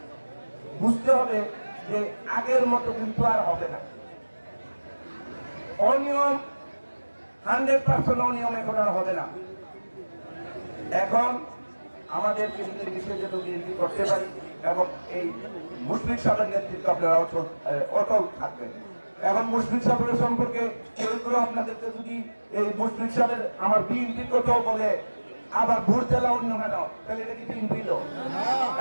বুঝতে হবে যে আগের মতো কিন্তু আর হবে না। অনিয়ম 100% অনিয়ম এখন আর হবে না। এখন আমাদেরকে বিশেষ বিএনপি করতে পারি এবং এই মুশফিক সাহেবের নেতৃত্ব আপনারা অটল থাকবেন। এখন মুশফিক সাহেবের সম্পর্কে কেউ আপনাদেরকে যদি এই মুশফিক সাহেবের আমার বিএনপির কথাও বলে আবার ভোট দেওয়া অন্য কেন, তাহলে এটা কি বিএনপি লোক?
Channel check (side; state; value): both; inverted; correlation -1.00